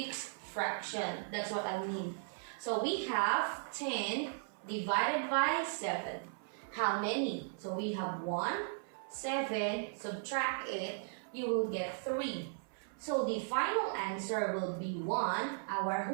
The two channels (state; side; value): silent; left; 53 dB below the other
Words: fraction. That's what I mean. So we have 10 divided by 7. How many? So we have 1, 7, subtract it, you will get 3. So the final answer will be 1, our